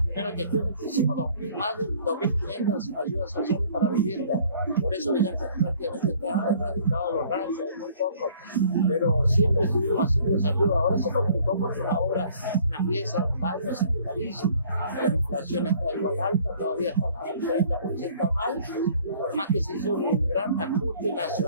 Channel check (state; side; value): inverted; both; correlation -0.55